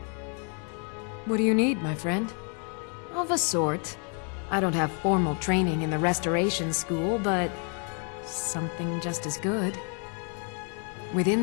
What do you need, my friend? Of a sort. I don't have formal training in the Restoration School, but something just as good.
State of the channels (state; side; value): quieter; right; 39.9 dB